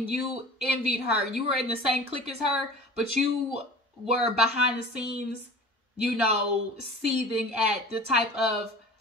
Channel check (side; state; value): both; normal; correlation 0.41